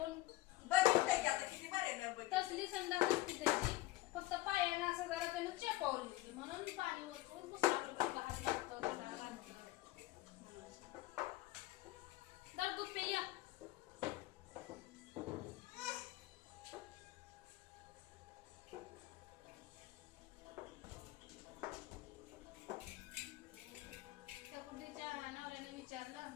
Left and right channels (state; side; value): quieter; right; 17.7 dB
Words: बघितलं की आता किती बरे ना बघ. तसली संडास असते त्याची फक्त पायाने असं जरा त्यानं चेपावली होती म्हणून पाणी वरतून पुसायला हात लागतो त्याला बांधतो. तर दूध पे या त्या कुठलीच्या नवऱ्याने विचारलं